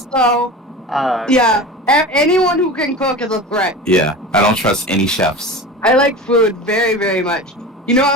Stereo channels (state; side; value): normal; both; correlation 0.32